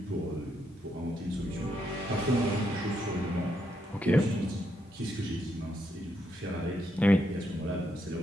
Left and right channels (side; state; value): both; normal; correlation 0.78